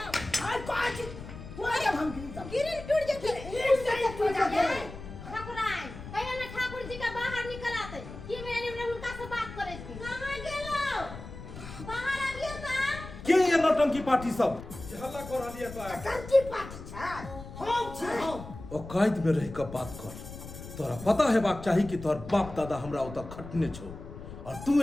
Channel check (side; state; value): left; noise; rumble, 12 dB below the sound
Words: हाय काज तू जब हम गिरिल टूट जेते ठाकुराइन कहियो ना ठाकुर जी का बाहर निकल आते की मैंने उनका से बात करे थी कहां गेलो बाहर आबियो त के ये नौटंकी पार्टी सब हल्ला कर लिया तो कंची पार्टी छ हम छी हम औकात में रह के बात कर तोरा पता है बात चाहिए कि तोर बाप दादा हमरा ओता खटने छो और तू